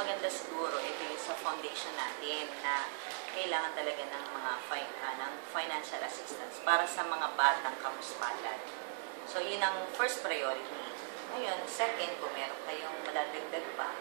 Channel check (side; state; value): left; silent; digital silence